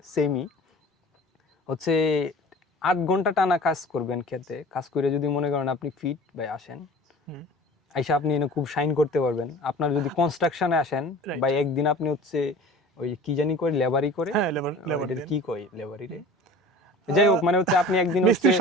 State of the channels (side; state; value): both; normal; correlation 0.42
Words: সেমই হচ্ছে 8 ঘন্টা টানা কাজ করবেন খেতে, কাজ করে যদি মনে করেন আপনি ফিট ভাই আসেন, আইসা আপনি এনে খুব শাইন করতে পারবেন। আপনার যদি কনস্ট্রাকশনে আসেন Right. ভাই, একদিন আপনি হচ্ছে ওই কি জানি করে লেবারি করে, হ্যাঁ লেবার এটার কি কয় লেবারি রে, যাই হোক, মানে হচ্ছে আপনি একদিন হচ্ছে মিস্ত্রির